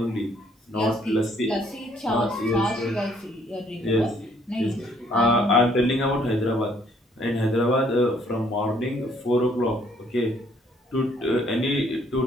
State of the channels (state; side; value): normal; both; correlation 0.64